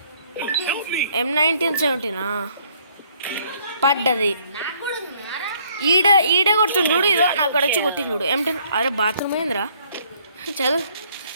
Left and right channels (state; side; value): inverted; both; correlation -0.64